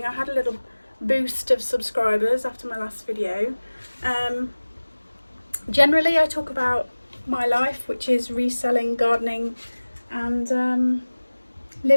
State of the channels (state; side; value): inverted; both; correlation -1.00